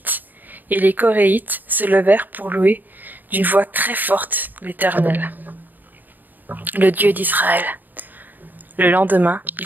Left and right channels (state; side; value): late; left; 0.088 ms